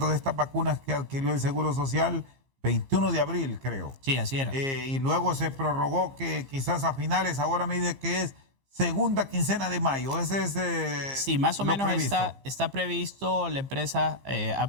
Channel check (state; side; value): late; left; 15 ms